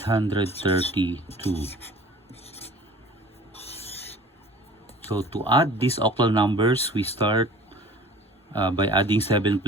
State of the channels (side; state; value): both; normal; correlation 0.45